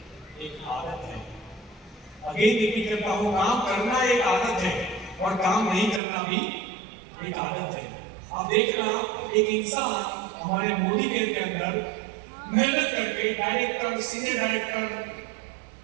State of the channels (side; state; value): left; drops out; at 6.0 s